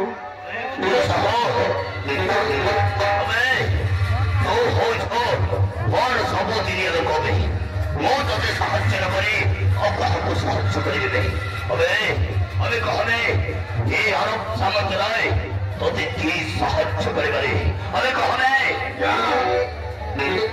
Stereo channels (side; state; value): both; identical; correlation 1.00